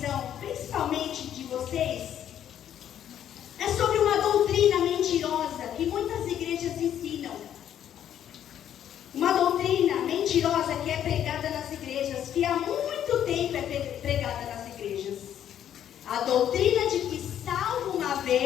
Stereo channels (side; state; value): right; quieter; 10.3 dB